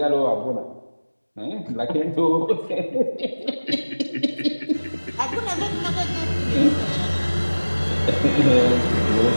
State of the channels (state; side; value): inverted; both; correlation -1.00